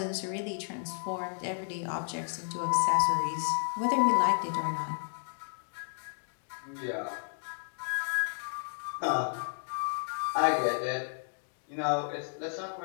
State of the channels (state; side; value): silent; right; digital silence